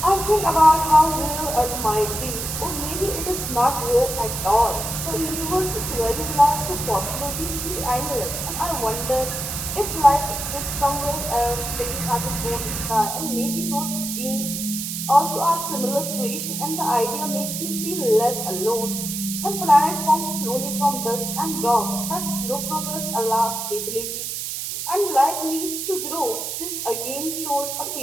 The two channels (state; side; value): noise; right; hiss, 4 dB below the sound